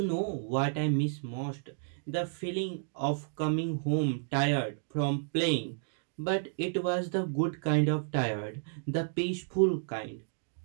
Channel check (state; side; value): silent; left; digital silence